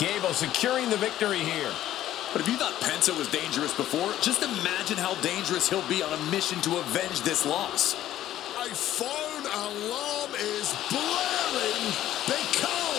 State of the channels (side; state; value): right; quieter; 12.9 dB